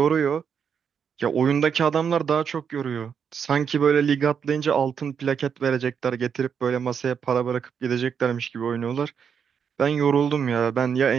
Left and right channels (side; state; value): left; quieter; 7.1 dB